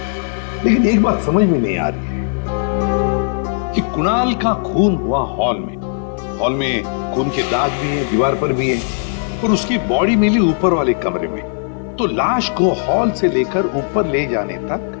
लेकिन एक बात समझ में नहीं आ रही है कि कुणाल का खून हुआ हॉल में। हॉल में खून के दाग भी हैं, दीवार पर भी है, और उसकी बॉडी मिली ऊपर वाले कमरे में। तो लाश को हॉल से लेकर ऊपर ले जाने तक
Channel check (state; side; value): silent; right; digital silence